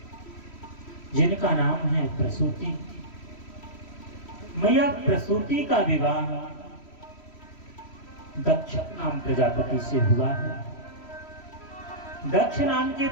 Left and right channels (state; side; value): late; right; 3.1 ms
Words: जिनका नाम है प्रसूति। मैया प्रसूति का विवाह दक्ष नाम प्रजापति से हुआ है। दक्ष नाम के